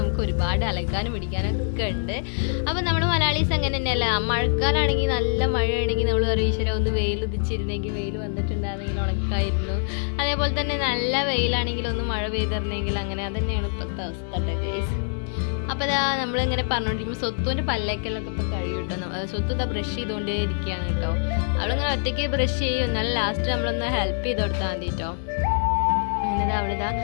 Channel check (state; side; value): silent; right; digital silence